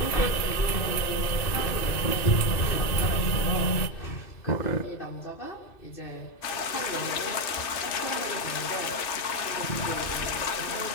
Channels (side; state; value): right; late; 2.6 ms